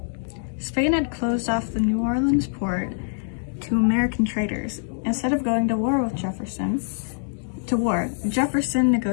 Spain had closed off the New Orleans port to American traders. Instead of going to war with Jefferson, Jefferson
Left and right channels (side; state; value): right; silent; digital silence